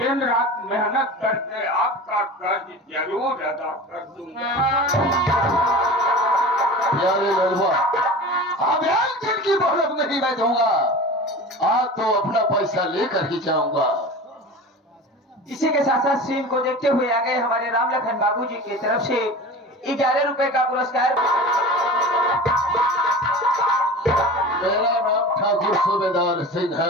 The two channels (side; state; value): both; normal; correlation 0.34